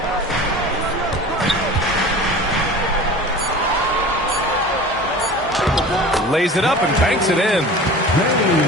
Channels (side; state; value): both; normal; correlation 0.38